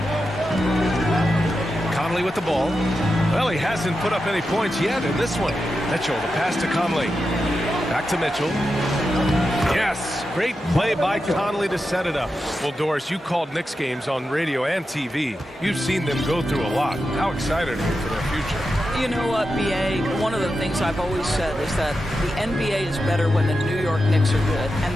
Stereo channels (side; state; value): both; normal; correlation 0.89